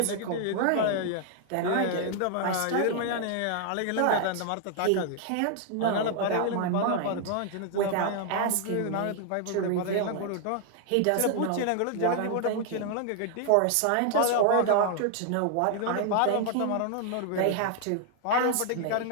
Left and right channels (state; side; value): different; both; correlation 0.00